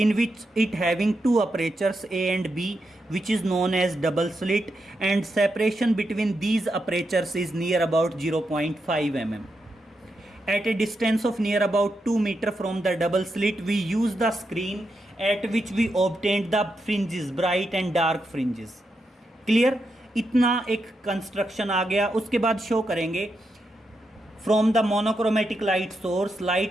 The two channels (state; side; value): normal; both; correlation 0.85